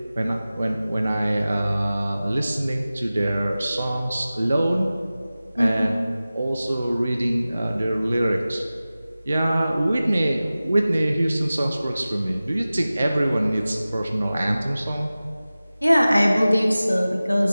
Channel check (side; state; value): both; inverted; correlation -0.97